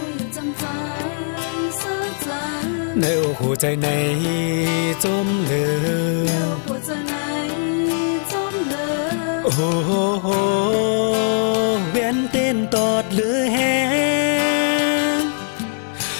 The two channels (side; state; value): right; silent; digital silence